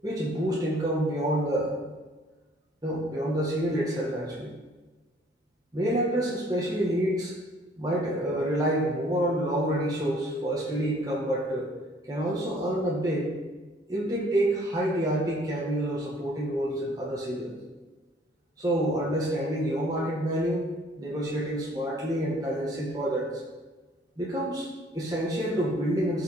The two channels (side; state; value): both; normal; correlation 0.58